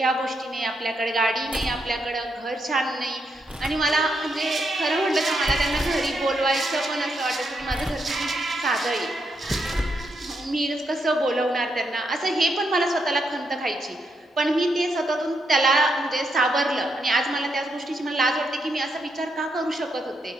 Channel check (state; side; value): normal; both; correlation 0.80